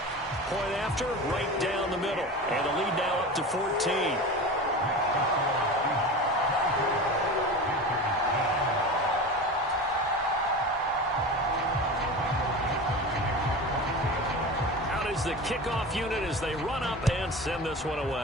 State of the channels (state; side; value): normal; both; correlation 0.30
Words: Point after, right down the middle. And the lead now up to 14. The kickoff unit as they run up and send this one